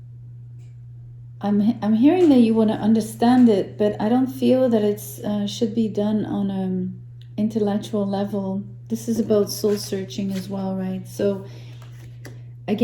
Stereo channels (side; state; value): both; identical; correlation 1.00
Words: I'm hearing that you want to understand it, but I don't feel that it's should be done on an intellectual level. This is about soul searching as well, right? So